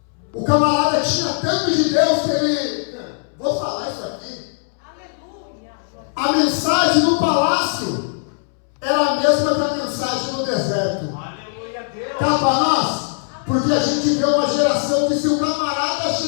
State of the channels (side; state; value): right; silent; 66 dB below the other